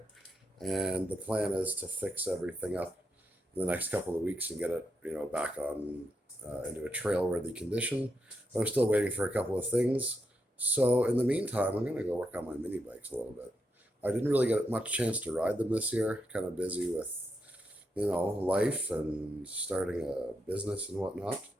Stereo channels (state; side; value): normal; both; correlation 0.83